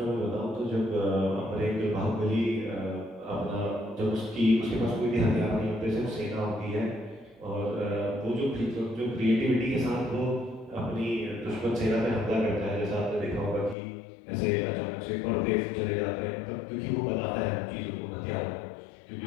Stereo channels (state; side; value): drops out; right; at 13.8 s